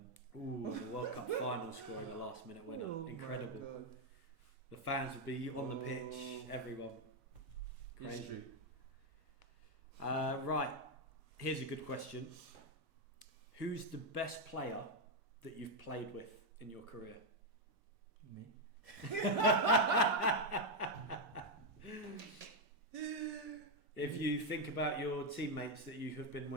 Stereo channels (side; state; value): both; normal; correlation 0.02